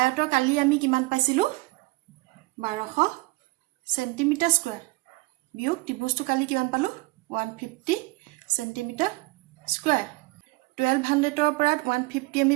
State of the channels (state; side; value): quieter; left; 24.2 dB